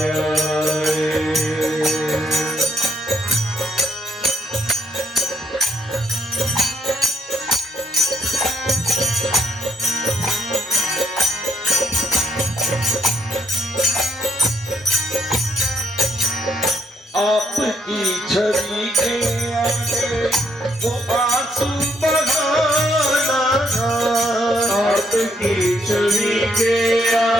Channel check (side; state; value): both; normal; correlation 0.72